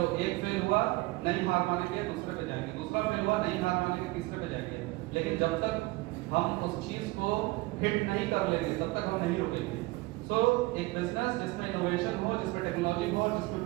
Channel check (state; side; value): quieter; left; 21.8 dB